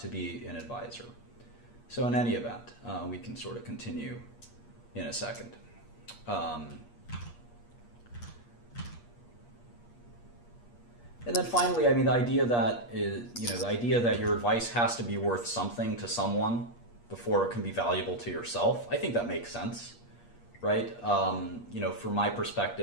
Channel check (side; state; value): right; late; 8.5 ms